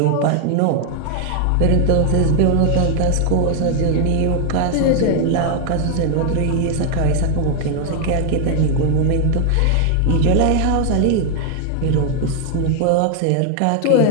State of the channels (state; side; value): different; both; correlation 0.00